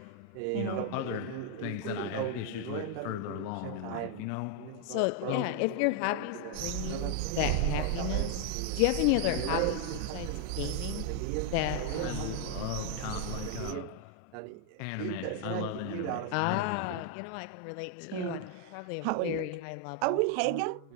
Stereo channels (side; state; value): both; different; correlation 0.00